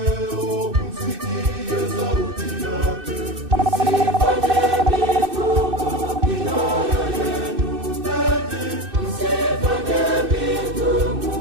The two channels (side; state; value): left; late; 2.6 ms